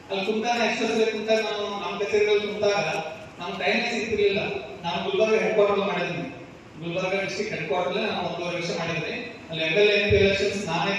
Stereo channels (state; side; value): identical; both; correlation 1.00